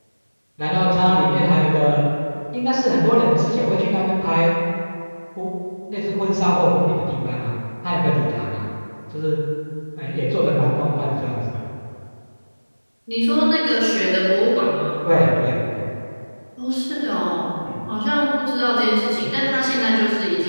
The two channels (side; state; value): both; inverted; correlation -1.00